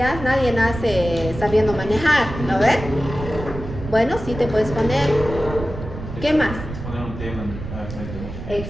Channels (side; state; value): right; noise; rumble, 9 dB below the sound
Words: nadie nace sabiendo manejar, ¿no ves? Bueno, sí te puedes poner. ¿Qué más?